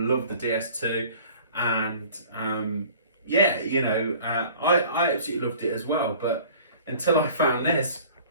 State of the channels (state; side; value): inverted; both; correlation -0.48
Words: the DS2, and yeah, you know, I absolutely loved it as well, but until I found this,